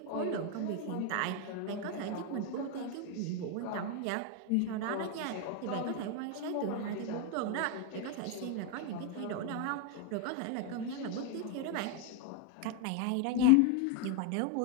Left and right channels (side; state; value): both; different; correlation 0.01